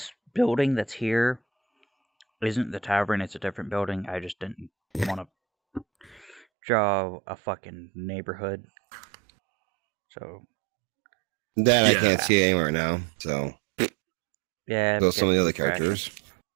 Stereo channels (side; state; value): left; drops out; at 6.4 s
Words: building that's here isn't the tavern. It's a different building. I just didn't want to draw a fucking neighborhood. So That I can't see anywhere now. So yeah, those some of the other crashing. characters.